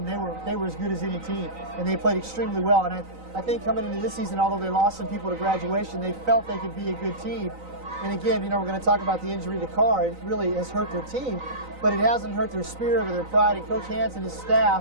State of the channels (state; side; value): late; left; 3.9 ms